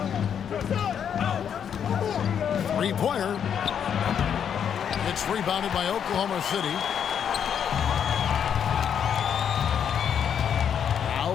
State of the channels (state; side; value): quieter; right; 8.2 dB